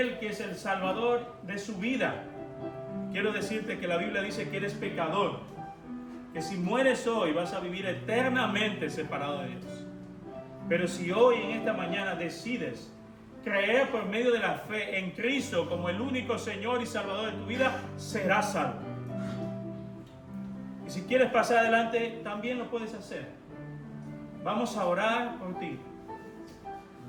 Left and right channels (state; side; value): identical; both; correlation 1.00